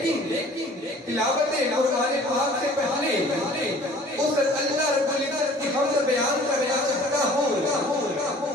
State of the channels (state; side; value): normal; both; correlation 0.50